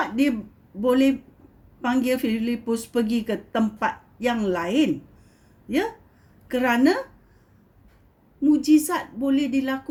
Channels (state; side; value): identical; both; correlation 1.00